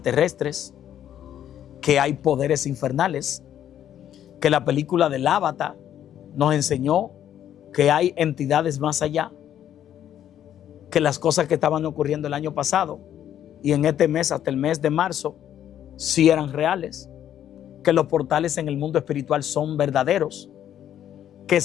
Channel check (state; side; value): quieter; right; 10.6 dB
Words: que hay poderes infernales, que la película del Avatar nos enseñó que hay entidades más allá, que las cosas que estaban ocurriendo el año pasado y en este mes, hasta el mes de marzo, sí eran reales, que los portales en el mundo espiritual son verdaderos, que